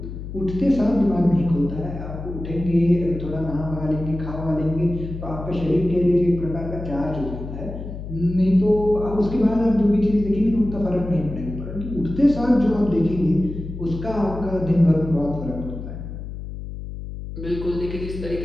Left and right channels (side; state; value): left; noise; hum, 9 dB below the sound